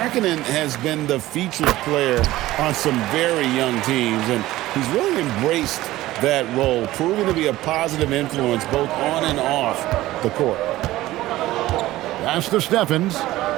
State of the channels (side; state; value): left; quieter; 16.5 dB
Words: has been the featured player on some very young teams, and he's really embraced that role, proving to be a positive influence both on and off the court. Pass to Stephens.